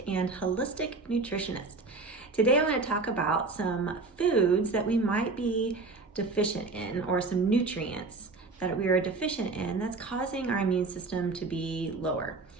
and holistic nutritionist. Today I want to talk about some foods that we might be deficient in, or some nutrients that we are deficient in that's causing our immune system to be lower.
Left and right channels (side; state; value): left; quieter; 3.7 dB